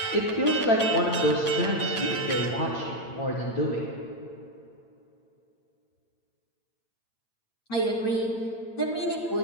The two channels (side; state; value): right; late; 8.9 ms